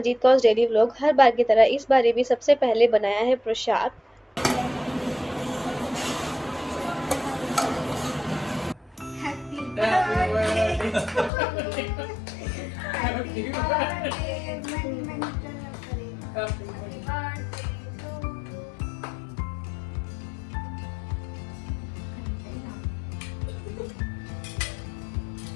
कौस daily vlog. हर बार की तरह इस बार भी सबसे पहले बनाया है प्रसाद।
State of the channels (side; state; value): right; drops out; at 11.3 s